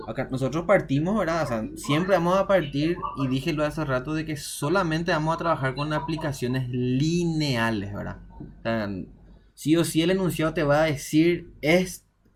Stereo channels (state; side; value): identical; both; correlation 1.00